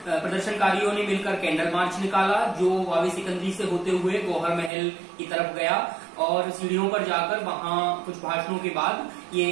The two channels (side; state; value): left; drops out; at 4.7 s